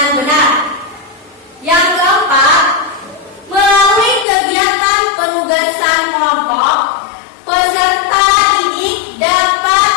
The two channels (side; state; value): right; drops out; at 4.2 s